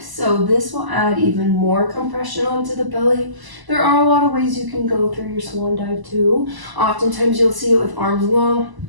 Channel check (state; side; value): late; left; 1.0 ms